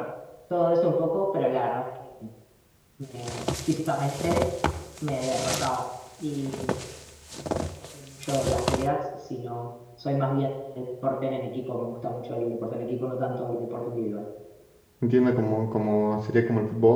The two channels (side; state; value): both; identical; correlation 1.00